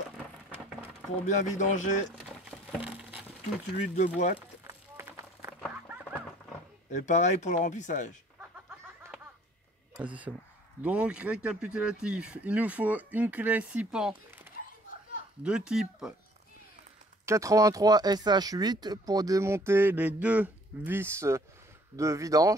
pour bien vidanger toute l'huile de boîte. Et pareil pour le remplissage. Vas-y, c'est bon. Donc récapitulatif, il nous faut une clé 6 pans de type 83 SH8 pour démonter les deux vis de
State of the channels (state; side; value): normal; both; correlation 0.57